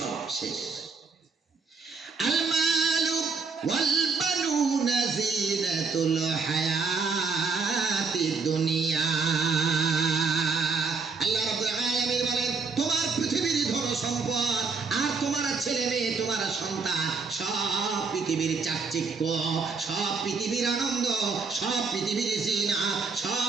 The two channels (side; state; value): left; quieter; 4.7 dB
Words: শেষ। আল মালু ওয়াল বানুনা জিনাতুল হায়াতিদ দুনিয়া। আল্লাহ রাব্বুল আলামিন বলেন, তোমার পৃথিবীর ধন সম্পদ আর তোমার ছেলে মেয়ে, তোমার সন্তান, সব পৃথিবীর চাকচিক্য, সব পৃথিবীর আনন্দ, সব পৃথিবীর জিনা,